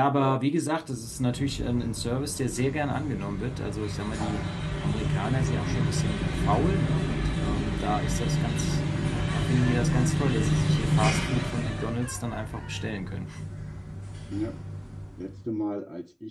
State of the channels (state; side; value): identical; both; correlation 1.00